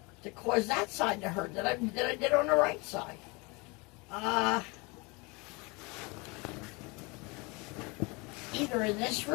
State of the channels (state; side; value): quieter; right; 27.5 dB